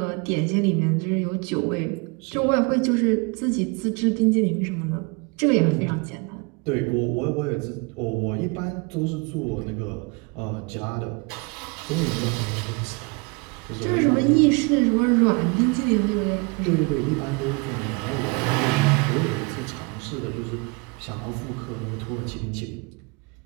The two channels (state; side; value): quieter; left; 30.0 dB